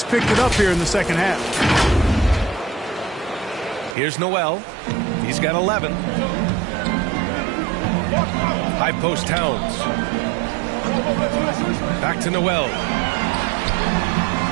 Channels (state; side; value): drops out; left; at 4.0 s